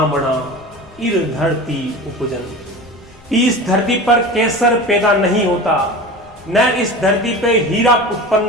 इर धरती उपजन। इस धरती पर केसर पैदा नहीं होता, न इस धरती पे हीरा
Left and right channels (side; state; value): left; noise; rumble, 27 dB below the sound